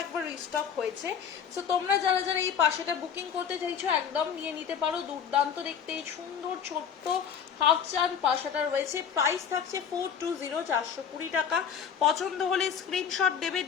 একবার রিস্টক হয়েছে। সো তোমরা যারা যারা এই পাশাটা বুকিং করতে চাইছো একদম নিয়ে নিতে পারো, দুর্দান্ত দেখতে এই সুন্দর ছোট্ট হাফ চান পাশাটা রয়েছে। প্রাইস থাকছে 420, 420 টাকা। পছন্দ হলে স্ক্রিনশট দেবে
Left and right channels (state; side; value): quieter; right; 7.7 dB